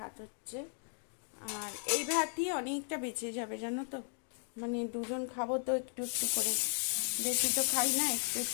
হচ্ছে। আর এই ভাতই অনেকটা বেঁচে যাবে, জানো তো। মানে দুজন খাবো তো একটু একটু করে, বেশি তো খাই না, একটু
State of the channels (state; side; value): silent; right; 54 dB below the other